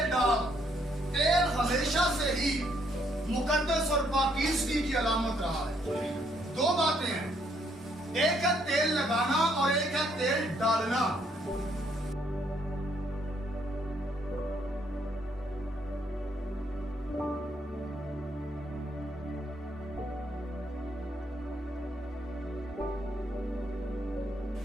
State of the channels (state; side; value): normal; both; correlation 0.70